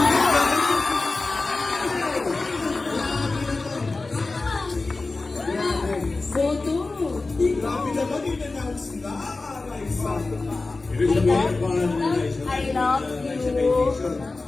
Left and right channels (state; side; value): quieter; right; 3.5 dB